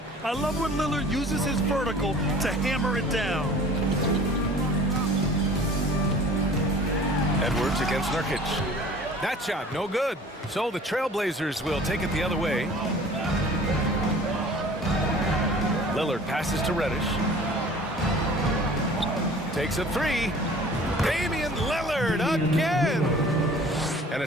I love when Lillard uses his vertical to hammer it down. Edwards against Nurkic. That shot, no good. So the Trailblazers will take it the other way. Lillard passes to Reddish. Takes a 3. Damian Lillard again. And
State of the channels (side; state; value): both; normal; correlation 0.47